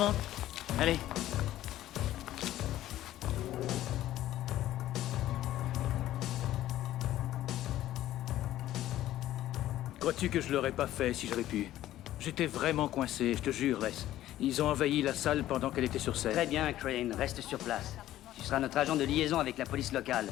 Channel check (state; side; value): quieter; right; 13.8 dB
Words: Allez. Crois-tu que je l'aurais pas fait si j'avais pu? J'étais vraiment coincé, je te jure, Les. Ils ont envahi la salle pendant qu'elle était sur scène. Très bien, Crane, reste sur place. Tu seras notre agent de liaison avec la police locale.